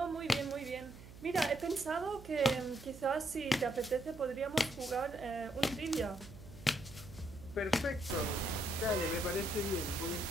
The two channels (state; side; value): noise; right; hum, 17 dB below the sound